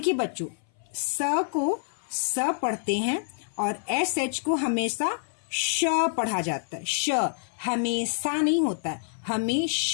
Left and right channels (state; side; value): silent; right; 58 dB below the other